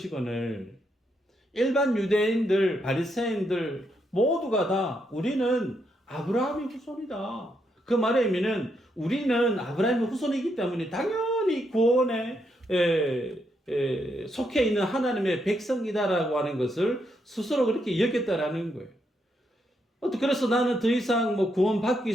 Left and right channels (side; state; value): both; normal; correlation 0.79